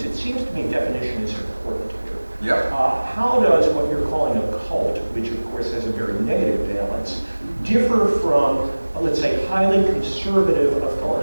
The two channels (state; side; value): inverted; both; correlation -1.00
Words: it seems to me definition is important here. Yep. How does what you're calling a cult, which of course has a very negative valence, differ from, let's say, highly conservative